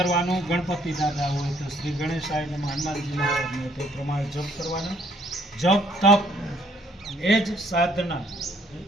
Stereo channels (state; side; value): normal; both; correlation 0.65